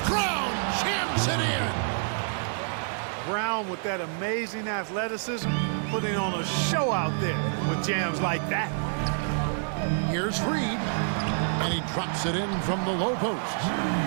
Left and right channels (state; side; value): silent; left; digital silence